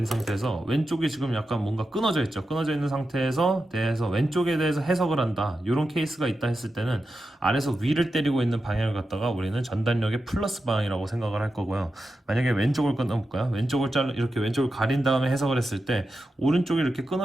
상태에서 왼쪽이 지금 약간 뭔가 끊어져 있죠. 끊어져 있는 상태에서 대해서 왼쪽에 대해서 해석을 한다. 이런 케이스가 있다 했을 때는 아래에서 위를 때리고 있는 방향을 갖다가 우리는 전달력의 플러스 방향이라고 생각을 할 거고요. 만약에 왼쪽을 끊어볼까요? 왼쪽을 이렇게 왼쪽을 가린 다음에 해석을 했을 때 오른쪽이 이렇게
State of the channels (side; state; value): both; normal; correlation 0.90